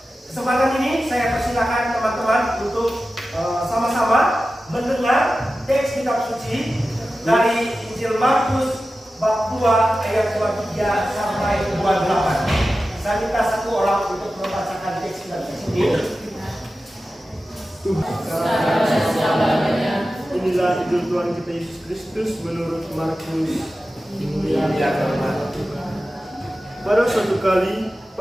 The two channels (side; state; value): both; normal; correlation 0.94